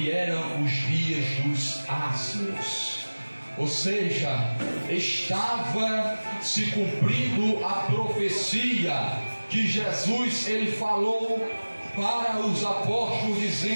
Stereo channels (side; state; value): both; inverted; correlation -1.00